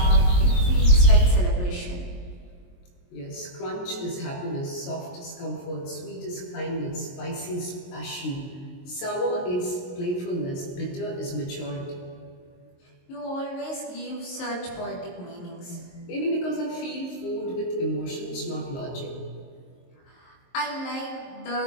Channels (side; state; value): right; late; 22 ms